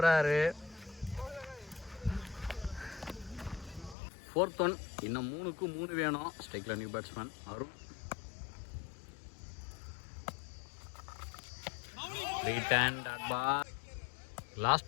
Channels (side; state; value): right; drops out; at 4.0 s